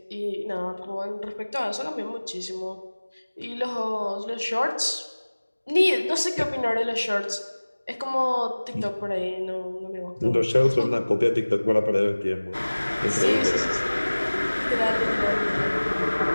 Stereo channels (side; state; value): both; inverted; correlation -1.00